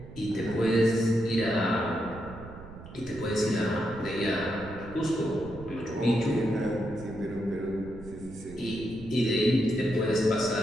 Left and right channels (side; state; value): right; noise; rumble, 15 dB below the sound